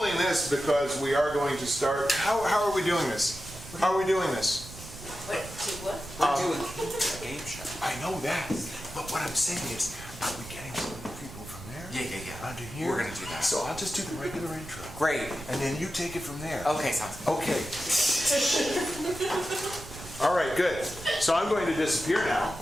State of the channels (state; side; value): noise; right; rumble, 14 dB below the sound